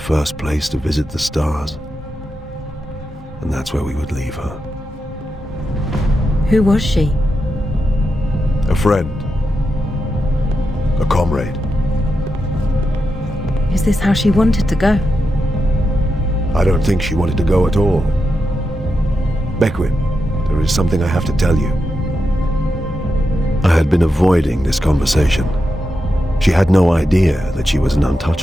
place to visit the stars, and that's where we would leave her. Who was she? A friend. A comrade. Is this how she wanted to go? I don't think she wanted to go at all. Beckwin, there is something I have to tell you. I had been avoiding this conversation. She had no idea that she was an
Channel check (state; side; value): normal; both; correlation 0.87